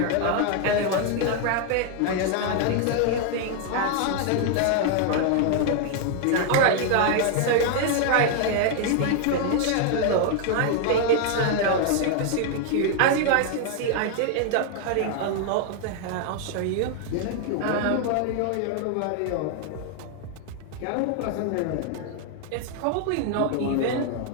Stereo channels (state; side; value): different; both; correlation 0.00